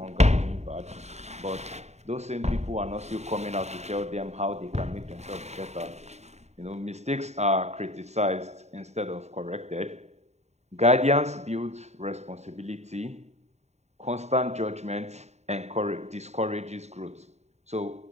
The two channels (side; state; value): left; late; 0.32 ms